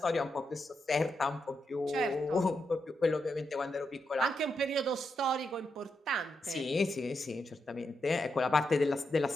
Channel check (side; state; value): both; normal; correlation 0.84